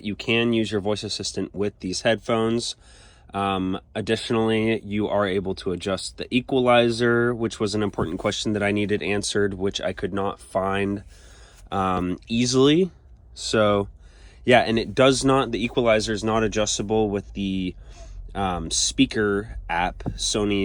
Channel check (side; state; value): both; identical; correlation 1.00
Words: you can use your voice assistant with these headphones. Additionally, you are able to adjust the equalizer, which was an important question that I needed answered, which I could not find easily. So yeah, and it does not, the equalizer is not adjustable with the speaker app, the